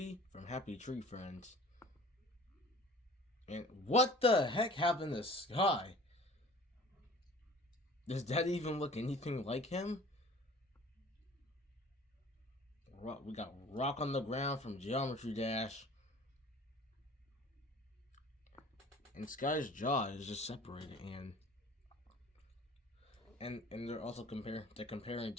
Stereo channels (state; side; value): normal; both; correlation 0.46